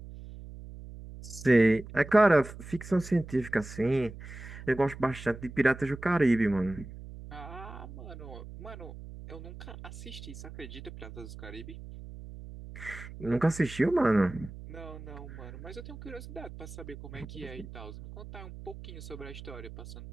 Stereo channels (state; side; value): noise; right; hum, 13 dB below the sound